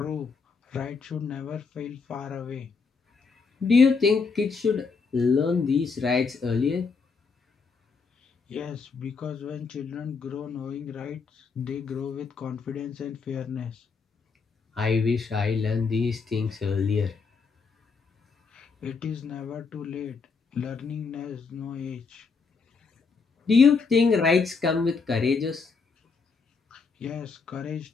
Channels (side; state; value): right; quieter; 4.9 dB